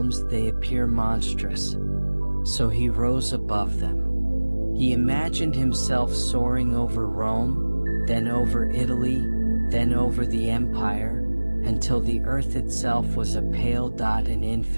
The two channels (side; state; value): both; inverted; correlation -1.00